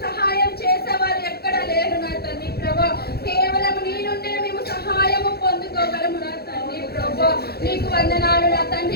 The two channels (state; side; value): late; right; 0.46 ms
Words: సహాయం చేసేవారు ఎక్కడ లేరు నా తండ్రి ప్రభా కేవలం నీ నుండే మేము సహాయము పొందుకోగలము నా తండ్రి ప్రభా నీకు వందనాలు నా